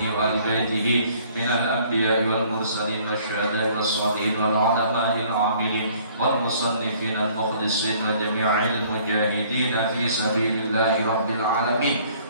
وآل بيته من الأنبياء والمرسلين والشهداء والصالحين والعلماء العاملين والمصنفين المخلصين وجميع المجاهدين في سبيل الله رب العالمين.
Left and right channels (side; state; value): both; inverted; correlation -0.58